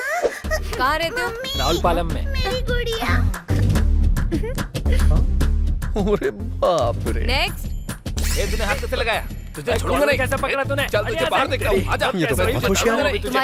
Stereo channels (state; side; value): identical; both; correlation 1.00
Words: कहाँ रहते हो? राउलपालम में। अरे बाप रे, नेक्स्ट, तूने हाथ कैसे लगाया? तुझे छोड़ूंगा नहीं। कैसे पकड़ा तूने? चल तुझे बाहर देखता हूँ। आजा। ये तो बहुत होशियार है।